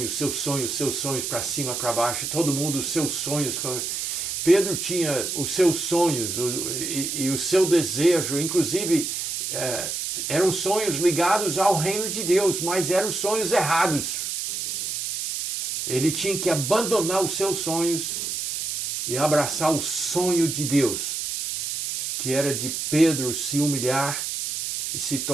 sonhos para cima, para baixo, todo mundo, os seus sonhos. Pedro tinha os seus sonhos e o seu desejo, inclusive eram sonhos ligados ao reino de Deus, mas eram sonhos errados. Ele tinha que abandonar os seus sonhos e abraçar o sonho de Deus, que era de Pedro se humilhar e se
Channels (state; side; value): noise; right; hiss, 3 dB below the sound